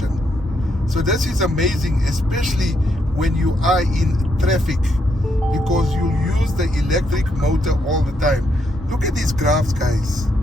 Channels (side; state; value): both; normal; correlation 0.77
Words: So this is amazing, especially when you are in traffic, because you use the electric motor all the time. Look at these graphs, guys.